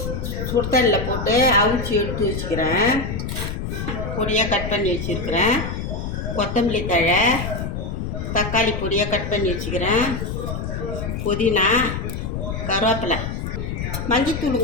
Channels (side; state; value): left; noise; rumble, 4 dB below the sound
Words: சுடுதண்ணில் போட்டு அவிச்சி எடுத்து வச்சுக்கிறேன். பொடியாக கட் பண்ணி வச்சுருக்கிறேன். கொத்தமல்லி தழை, தக்காளி பொடியாக கட் பண்ணி வச்சுக்கிறேன். புதினா, கருவேப்பிலை,